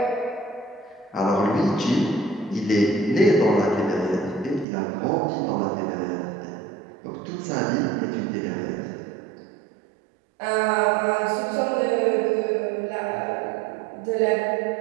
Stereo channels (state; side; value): drops out; left; at 4.7 s